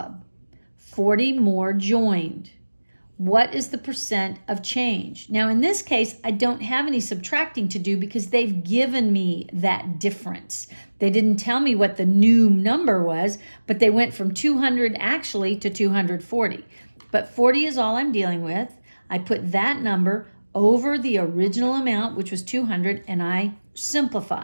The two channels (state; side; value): inverted; both; correlation -1.00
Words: 40 more joined. What is the percent of change? Now, in this case, I don't have any subtracting to do because they've given me that difference. They didn't tell me what the new number was, but they went from 200 actually to 240. But 40 is all I'm dealing with. I put that number over the original amount, which was 200, and I